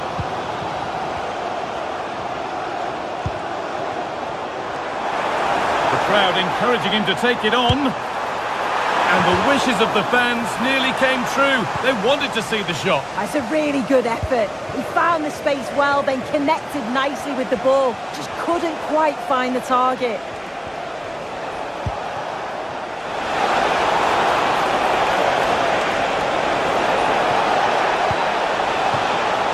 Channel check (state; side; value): identical; both; correlation 1.00